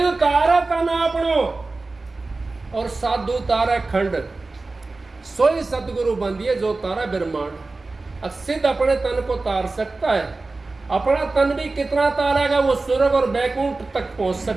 तारा का ना अपनो और साधु तारा खंड, सोई सदगुरु बंदिए जो तारा ब्रह्मांड। सिद्ध अपने तन को तार सकता है, अपना तन भी कितना तारेगा वो स्वर्ग और बैकुंठ तक पहुंच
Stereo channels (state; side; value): quieter; left; 3.5 dB